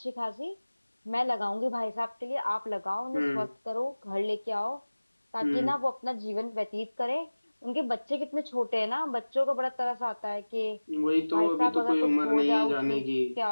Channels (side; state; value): both; inverted; correlation -1.00